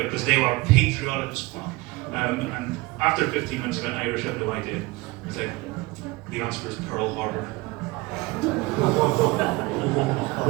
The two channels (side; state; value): left; quieter; 22.8 dB